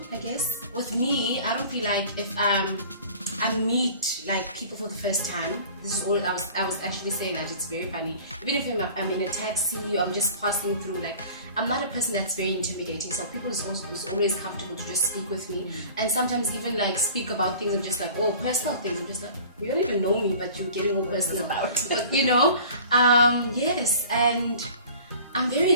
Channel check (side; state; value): both; inverted; correlation -0.45